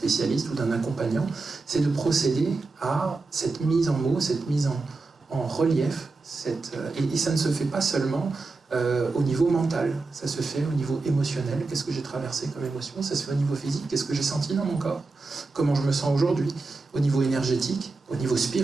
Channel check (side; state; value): left; quieter; 3.8 dB